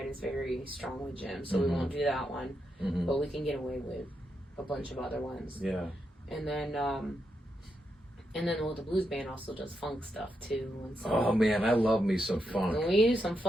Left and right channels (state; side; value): normal; both; correlation 0.84